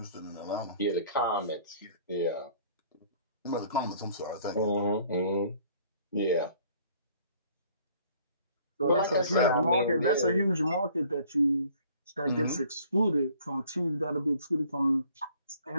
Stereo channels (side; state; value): both; inverted; correlation -0.56